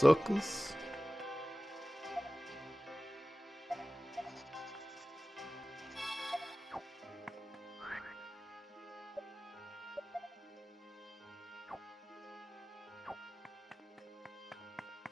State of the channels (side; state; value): both; normal; correlation 0.97